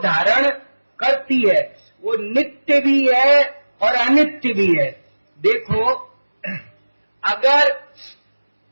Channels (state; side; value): inverted; both; correlation -1.00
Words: धारण करती है। वो नित्य भी है और अनित्य भी है। देखो, अगर